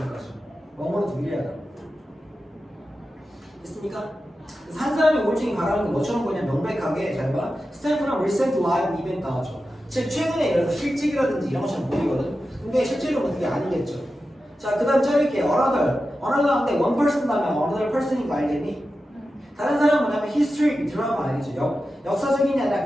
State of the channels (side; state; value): both; normal; correlation 0.92